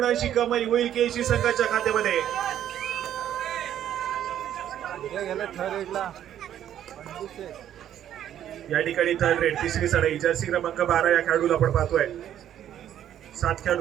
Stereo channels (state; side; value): quieter; left; 10.8 dB